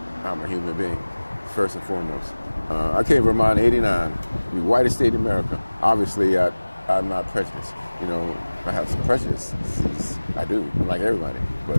I'm a human being, first and foremost. I came to Vermont in '89, the whitest state in America. Obviously, I'm not prejudiced. I have some prejudices. I do, like everybody, but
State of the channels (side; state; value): both; inverted; correlation -1.00